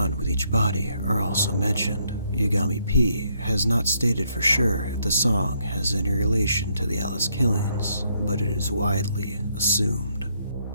with each body are also mentioned. Yagami P has not stated for sure if the song has any relation to the Alice killings, but it is widely assumed.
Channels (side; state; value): both; inverted; correlation -0.73